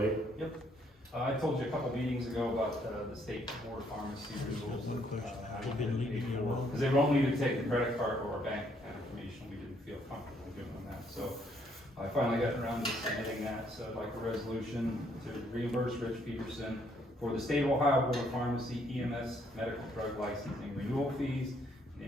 Yep. I told you a couple meetings ago about the state board of pharmacy rules. Because they won't need to take the credit card or our bank account information. We didn't feel comfortable doing that. So I finally got around to submitting that. So I'd like a resolution to reimburse Rich Peterson for the state of Ohio Board of Pharmacy EMS medical drug licensing renewal fees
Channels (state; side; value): normal; both; correlation 0.69